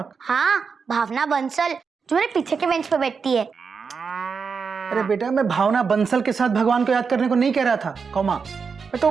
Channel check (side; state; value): left; quieter; 5.5 dB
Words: हाँ, भावना बंसल जो मेरे पीछे के बेंच पे बैठती है। अरे बेटा, मैं भावना बंसल के साथ भगवान को याद करने को नहीं कह रहा था, कॉमा। मैं तो